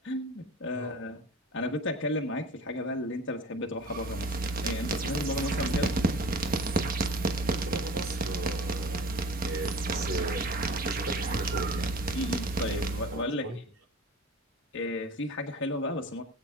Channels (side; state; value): both; normal; correlation 0.40